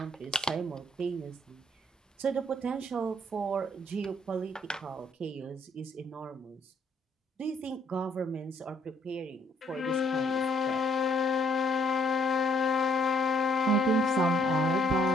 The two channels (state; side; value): normal; both; correlation 0.67